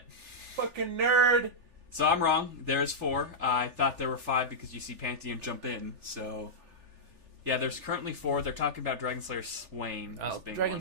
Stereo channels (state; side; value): late; left; 3.4 ms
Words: Fucking nerd! So I'm wrong. There's 4. I thought there were 5 because you see Pantheon jump in. So, yeah, there's currently 4. They're talking about Dragonslayer Swain as being one.